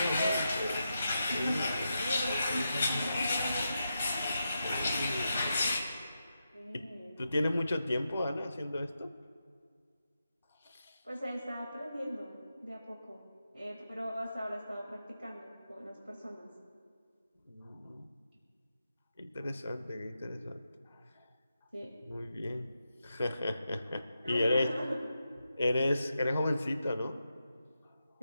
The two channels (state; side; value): inverted; both; correlation -0.87